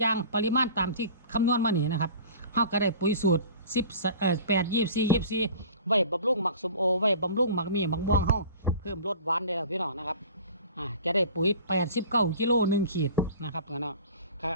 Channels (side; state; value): both; inverted; correlation -0.42